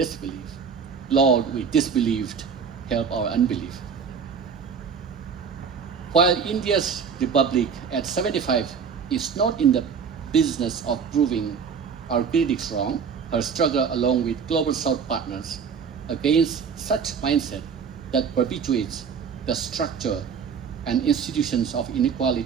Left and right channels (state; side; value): quieter; left; 6.4 dB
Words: Lord, we disbelieved, help our unbelief. While India's republic at 75 is not in the business of proving our critics wrong, her struggle along with global South partners against such mindset that perpetuates the structure and institutions of